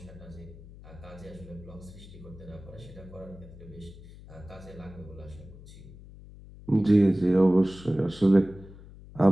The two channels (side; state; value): left; noise; hum, 18 dB below the sound